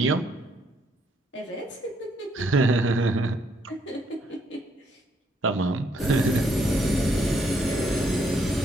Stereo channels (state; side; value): normal; both; correlation 0.71